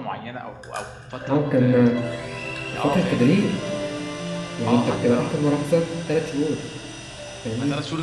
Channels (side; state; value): both; identical; correlation 1.00